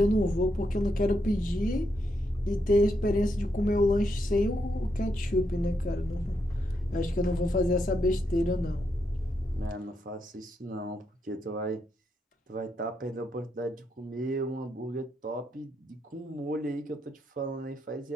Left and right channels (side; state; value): both; normal; correlation 0.80